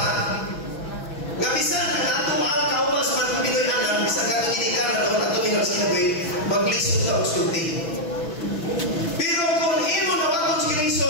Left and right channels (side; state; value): right; late; 6.1 ms